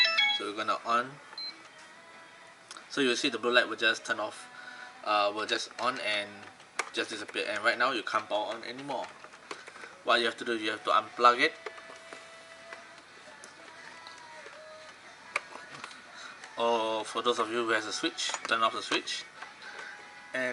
So we're gonna on. So you'll see the blue light will just turn off, will just on and just disappear. And right now you can't power on anymore. What you have to do, you have to unplug it, or for those of you who has a switch, turn off the switch,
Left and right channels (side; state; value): both; identical; correlation 1.00